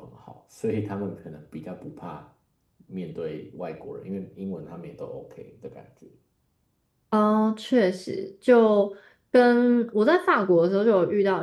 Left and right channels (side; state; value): both; identical; correlation 1.00